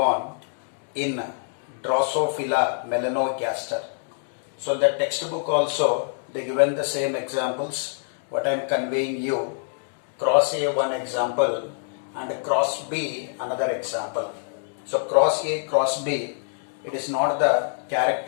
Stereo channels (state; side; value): silent; right; digital silence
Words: in Drosophila melanogaster. So the textbook also, they given the same examples what I am conveying you. Cross A one example and cross B another example. So cross A, cross B, it is not the